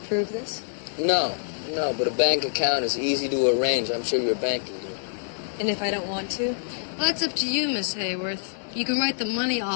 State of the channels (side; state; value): right; silent; digital silence